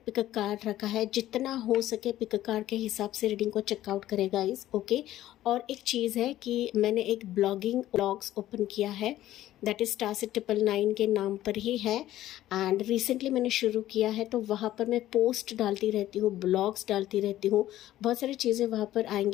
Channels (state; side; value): quieter; right; 13.9 dB